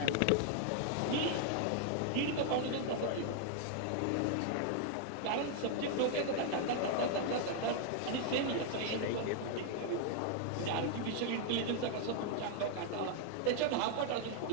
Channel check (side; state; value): both; different; correlation 0.00